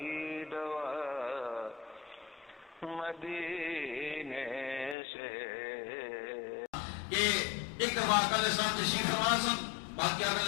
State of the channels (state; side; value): drops out; right; at 5.0 s